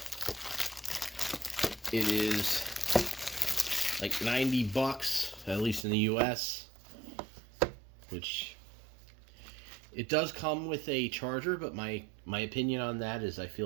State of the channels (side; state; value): left; drops out; at 5.9 s